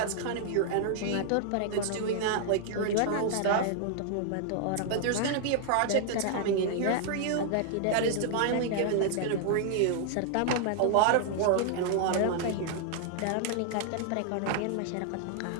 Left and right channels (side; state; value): both; different; correlation -0.01